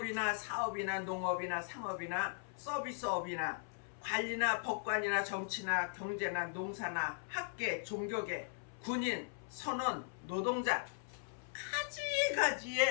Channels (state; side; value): silent; right; 52 dB below the other